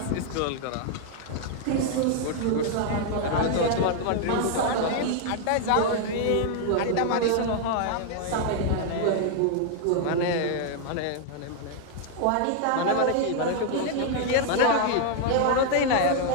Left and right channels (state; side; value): different; both; correlation 0.00